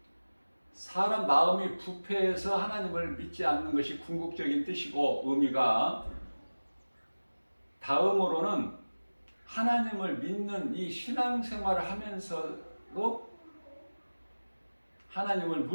사람 마음이 부패해서 하나님을 믿지 않는 것이 궁극적인 뜻이고 의미가, 다음으로는 하나님을 믿는 이 신앙생활을 하면서도 하나님을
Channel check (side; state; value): both; inverted; correlation -1.00